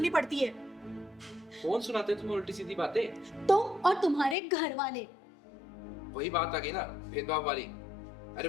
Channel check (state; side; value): drops out; right; at 4.4 s